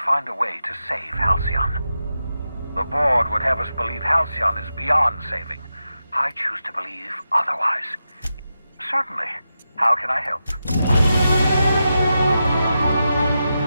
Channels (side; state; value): both; inverted; correlation -0.89